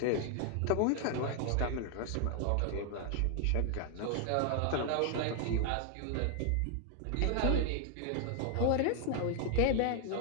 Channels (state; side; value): different; both; correlation 0.00